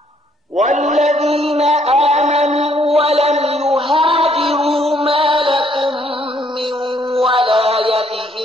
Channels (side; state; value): both; normal; correlation 0.67